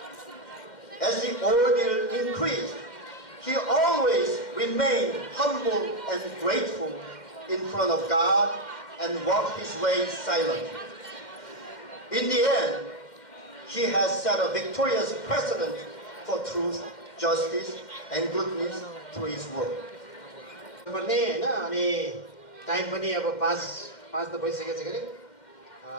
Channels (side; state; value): right; late; 2.1 ms